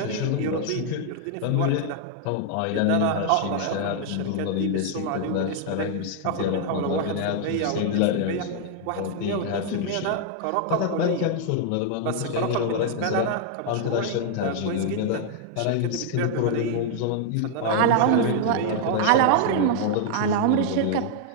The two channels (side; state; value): both; different; correlation 0.00